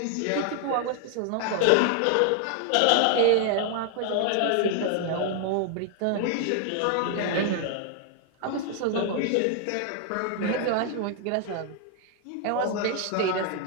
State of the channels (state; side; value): different; both; correlation 0.00